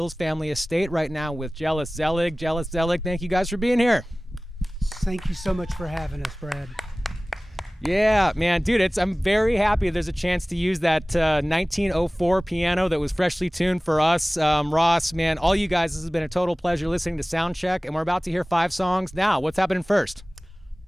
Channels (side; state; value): both; normal; correlation 0.98